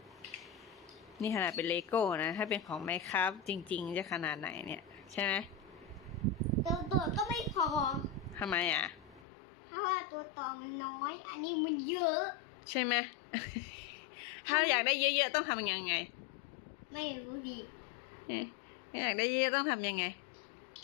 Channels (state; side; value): drops out; right; at 9.2 s